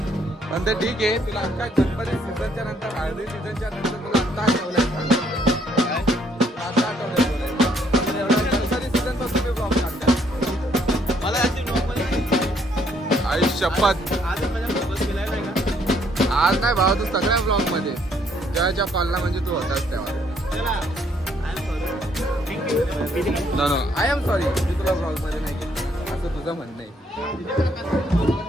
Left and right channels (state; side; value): normal; both; correlation 0.68